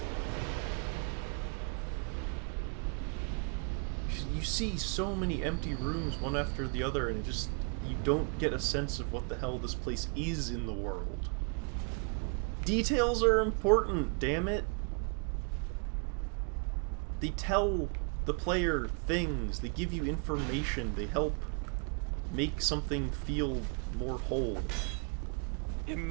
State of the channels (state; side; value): quieter; left; 37.4 dB